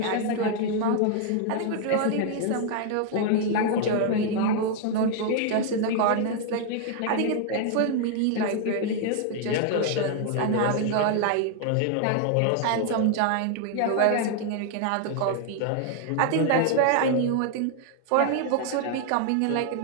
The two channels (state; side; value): different; both; correlation 0.00